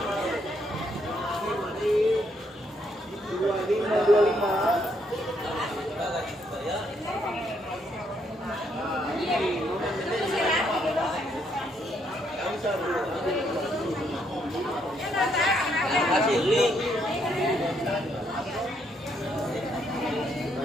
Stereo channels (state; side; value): normal; both; correlation 0.73